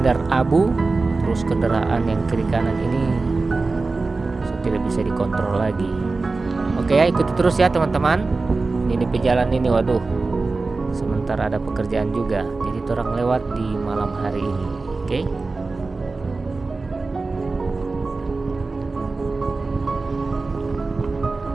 abu. Terus kendaraan yang kiri kanan ini tidak bisa dikontrol lagi. Oke ya, ikuti terus ya teman-teman. Ini pejalan ini, waduh, sementara ada pekerjaan juga, jadi orang lewat di malam hari ini. Oke.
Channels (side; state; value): left; quieter; 3.7 dB